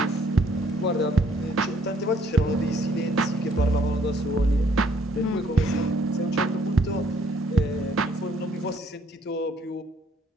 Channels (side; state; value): both; normal; correlation 0.65